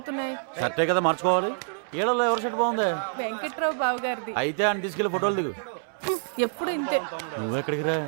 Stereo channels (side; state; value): left; silent; 60 dB below the other